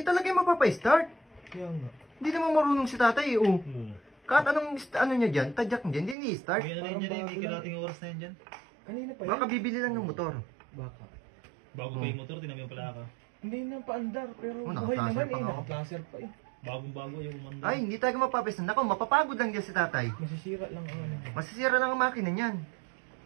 talaga yung mapapa-start. Kaya nga. Hindi naman marunong si tatay, oh. Kahit anong, ano niya dyan, tadyak niya dyan, hindi i-start. May ano rin dyan eh, may kalating oras na yan dyan. Kanina pa yan. Baka bibili lang ng motor. Baka. Bago pa yung motor, tinami yung palaka. Hindi na paandar, pero Oh, buhay naka-placer naman pa eh. nga. Naka-placer pa eh. Bagong-bago yung umanda. Ay, hindi talaga mapapa-start. Nako, mapapagod lang dyan si tatay. Masisira lang ang ano. Masisira lang ang makina niyan.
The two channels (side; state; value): left; drops out; at 6.2 s